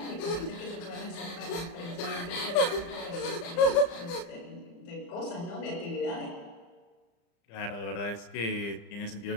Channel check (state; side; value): late; right; 35 ms